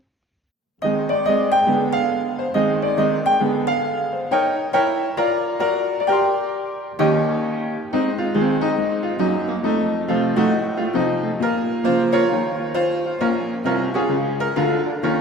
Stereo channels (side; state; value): both; normal; correlation 0.56